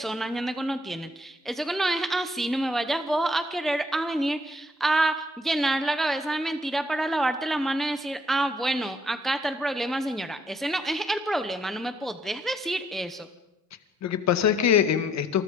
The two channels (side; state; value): both; normal; correlation 0.67